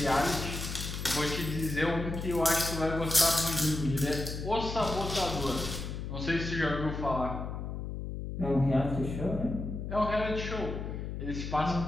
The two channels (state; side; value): noise; left; hum, 6 dB below the sound